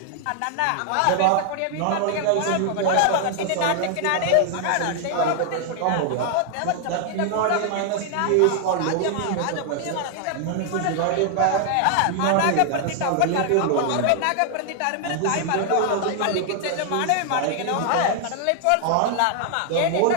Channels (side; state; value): both; different; correlation 0.00